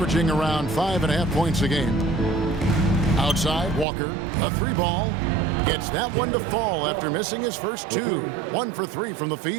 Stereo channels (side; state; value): left; drops out; at 3.9 s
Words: around 5.5 points a game. Outside, Walker, a 3-ball. Gets that one to fall after missing his first 2. 1 for 3 from the